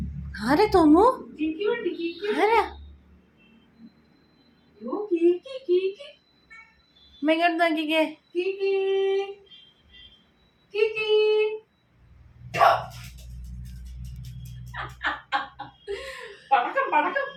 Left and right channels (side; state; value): both; identical; correlation 1.00